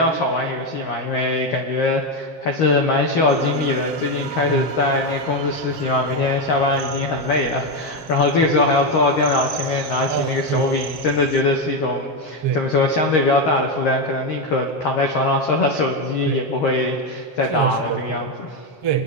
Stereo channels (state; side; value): late; right; 7.5 ms